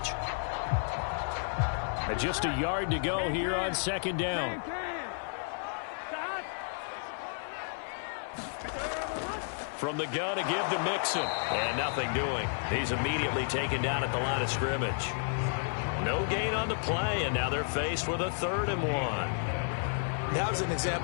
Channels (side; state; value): right; silent; 57 dB below the other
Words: And just a yard to go here on 2nd down. From the gun to give to Mixon. And nothing doing. He's immediately taken down at the line of scrimmage. No gain on the play, and now they're faced with a 3rd and 1. That was an